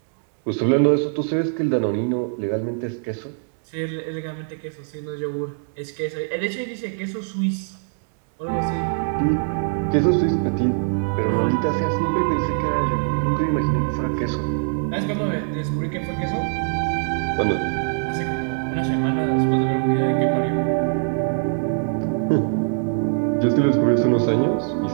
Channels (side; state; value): left; silent; digital silence